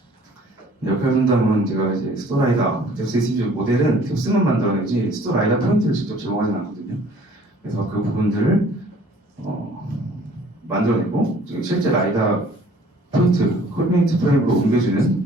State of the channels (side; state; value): both; normal; correlation 0.55